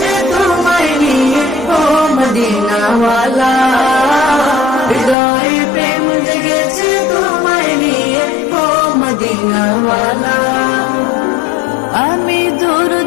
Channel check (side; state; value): right; drops out; at 5.2 s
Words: তোমায় নিয়ে ও মদিনাওয়ালা। হৃদয়ে প্রেম জেগেছে তোমায় নিয়ে ও মদিনাওয়ালা। আমি